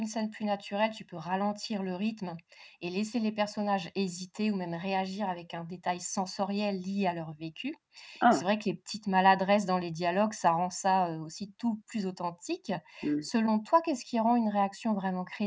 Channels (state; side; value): identical; both; correlation 1.00